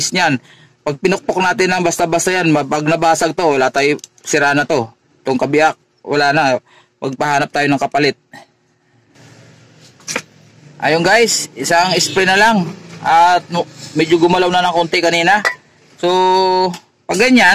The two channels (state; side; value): identical; both; correlation 1.00